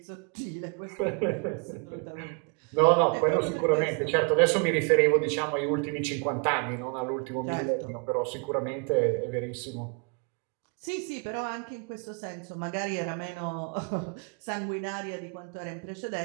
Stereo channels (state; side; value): quieter; left; 36.8 dB